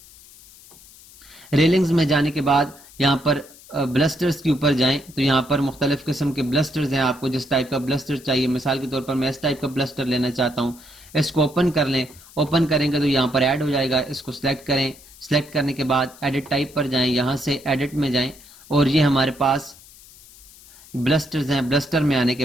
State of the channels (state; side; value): noise; left; hiss, 22 dB below the sound